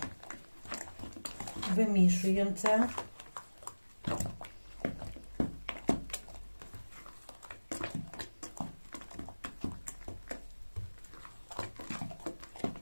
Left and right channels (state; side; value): inverted; both; correlation -1.00